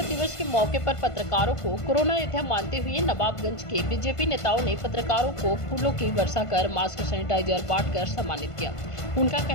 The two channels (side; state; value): right; late; 1.5 ms